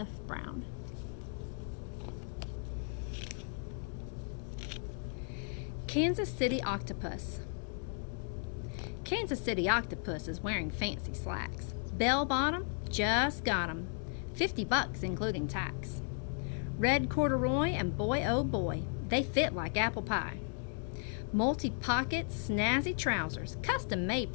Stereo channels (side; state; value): right; silent; 54 dB below the other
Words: Brown. Kansas City Octopus. Kansas City Octopus is wearing fancy slacks. Bell bottom, just got 'em. $50 including tax. Red corduroy and boy oh boy, they fit like apple pie. Multi-pocket snazzy trousers, custom made